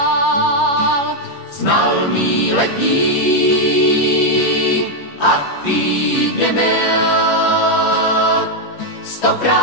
Znal mý letní a týdny mil,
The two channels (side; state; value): right; late; 14 ms